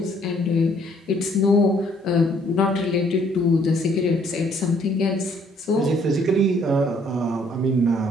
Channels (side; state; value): both; normal; correlation 0.63